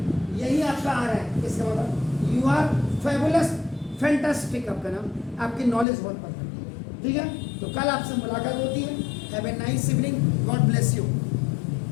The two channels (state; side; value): drops out; right; at 5.9 s